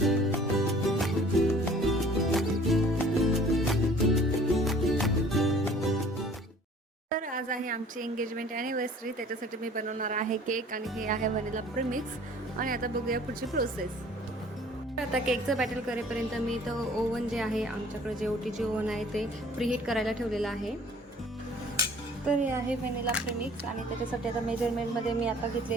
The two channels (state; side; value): normal; both; correlation 0.52